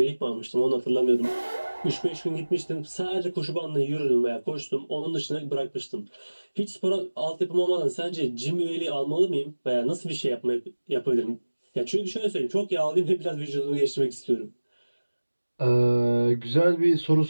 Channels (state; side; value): inverted; both; correlation -1.00